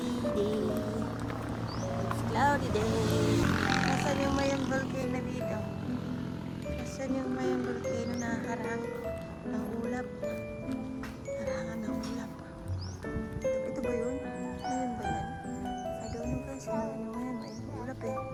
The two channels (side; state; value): both; identical; correlation 1.00